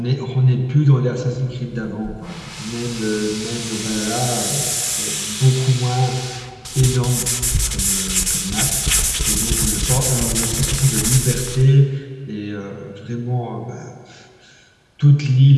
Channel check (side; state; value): both; identical; correlation 1.00